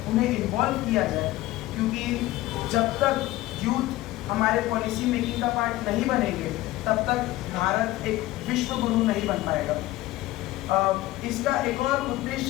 उन्हें इन्वॉल्व किया जाए, क्योंकि जब तक यूथ हमारे पॉलिसी मेकिंग का पार्ट नहीं बनेंगे तब तक भारत एक विश्व गुरु नहीं बन पाएगा। इसका एक और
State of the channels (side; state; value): right; quieter; 17.2 dB